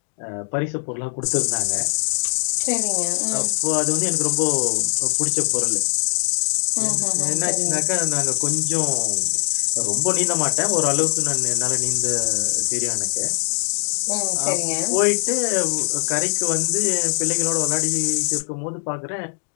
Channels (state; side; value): silent; right; digital silence